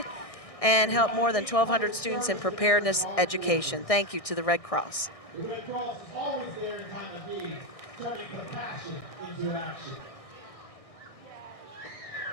and helped more than 1,200 students in preparedness education. Thank you to the Red Cross. The Red Cross is always there in time of need, turning compassion into action.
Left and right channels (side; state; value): right; late; 1.6 ms